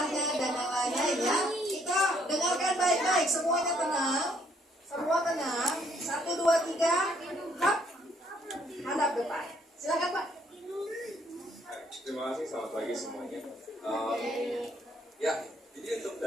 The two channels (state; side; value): normal; both; correlation 0.67